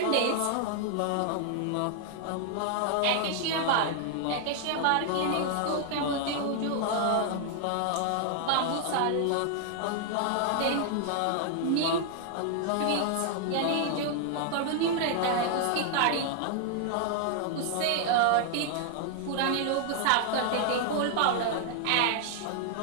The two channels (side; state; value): both; different; correlation 0.00